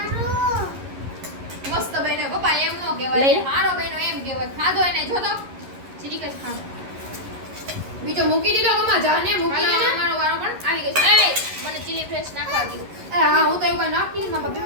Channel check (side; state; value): left; late; 11 ms